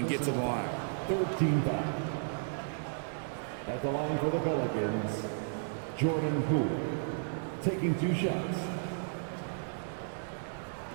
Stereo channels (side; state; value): left; silent; 55 dB below the other